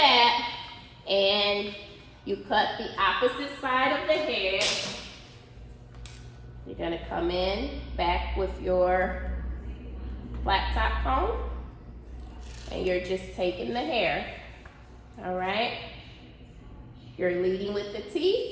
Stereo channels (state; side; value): identical; both; correlation 1.00